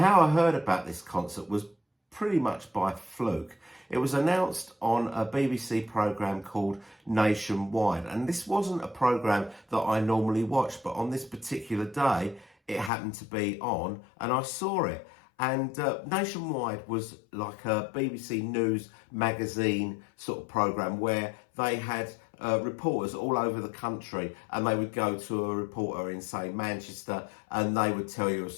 I heard about this concert was pretty much by fluke. It was announced on a BBC programme called Nationwide, and this wasn't a programme that I normally watch, but on this particular day it happened to be on and I saw it. And Nationwide was like a BBC News magazine sort of programme where they had reporters all over the country, and they would go to a reporter in, say, Manchester, and they would tell you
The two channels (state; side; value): drops out; right; at 12.9 s